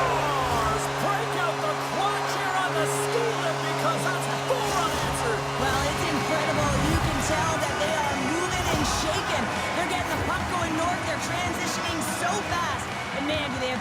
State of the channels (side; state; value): both; identical; correlation 1.00